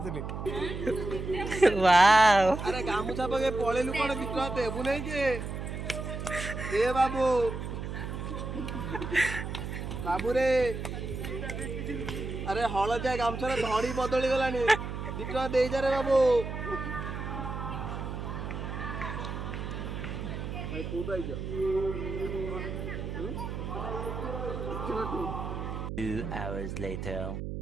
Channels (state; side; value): noise; right; hum, 5 dB below the sound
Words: थिली वाओ अरे गामुछा पके पळेलु कोन बिट्रा देबु नै के ए बाबू बाबू रे अरे हळदिया गामछार धड़ी बदली गलानी बिट्रा देई जा रे बाबू भाई तू तो आइजा 2 hours later.